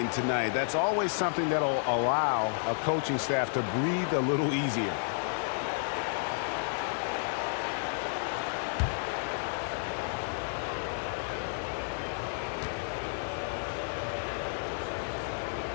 tonight. That's always something that'll allow a coaching staff to breathe a little easier.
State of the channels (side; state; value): right; silent; digital silence